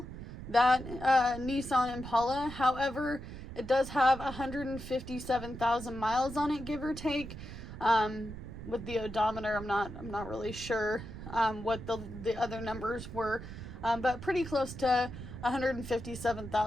that Nissan Impala. However, it does have 157,000 miles on it, give or take. With the odometer, I'm not really sure what the other numbers were, but pretty close to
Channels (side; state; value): right; noise; rumble, 11 dB below the sound